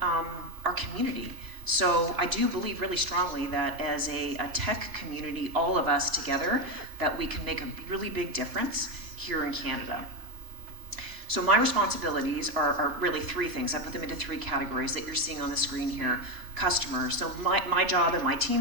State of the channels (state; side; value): late; left; 3.2 ms